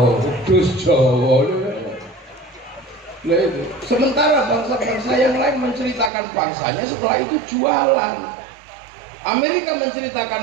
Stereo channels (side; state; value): left; drops out; at 6.1 s